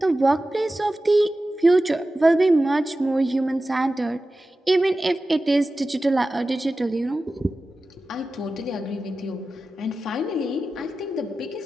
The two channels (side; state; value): both; normal; correlation 0.94